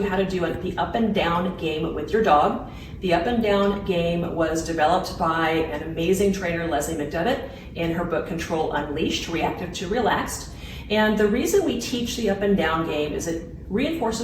how to do the up and down game with your dog. The up and down game was developed by an amazing trainer, Leslie McDevitt, in her book Control Unleashed, Reactive to Relaxed. And the reason we teach the up and down game is it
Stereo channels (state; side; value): identical; both; correlation 1.00